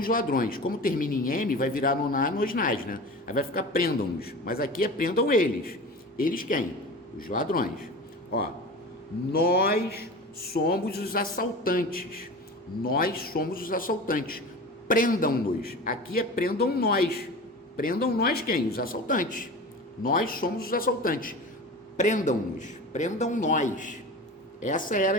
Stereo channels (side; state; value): both; normal; correlation 0.33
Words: ladrões. Como termina em M, vai virar no na, nos nas, né? Aí vai ficar prendam-nos. Mas aqui é prendam eles. Eles quem? Os ladrões. Ó, nós somos os assaltantes. Nós somos os assaltantes. Prendam-nos. Aqui é prendam nós. Prendam nós quem? Os assaltantes. Nós somos os assaltantes. Prendam-nos. Prendam nós. Essa era